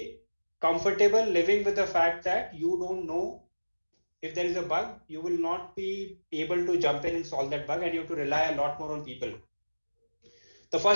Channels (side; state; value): both; inverted; correlation -1.00